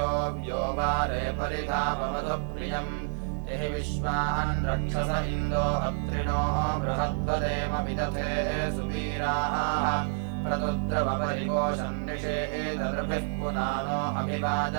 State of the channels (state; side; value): silent; left; digital silence